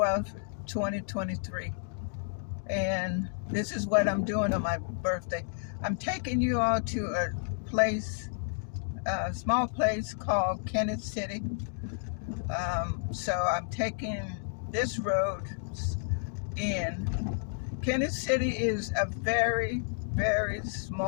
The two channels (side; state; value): right; silent; digital silence